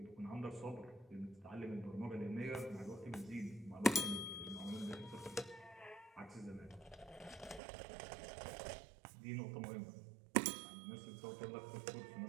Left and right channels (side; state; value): left; drops out; at 7.6 s